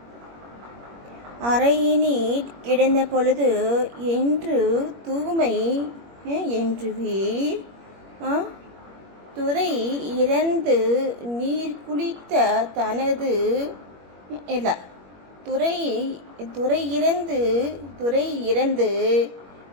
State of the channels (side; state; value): left; late; 21 ms